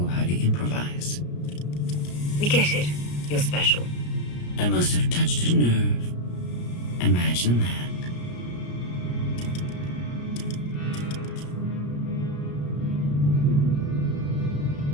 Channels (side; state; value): right; late; 34 ms